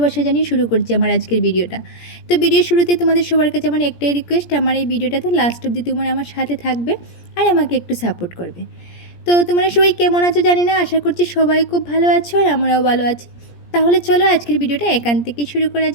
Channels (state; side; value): late; right; 17 ms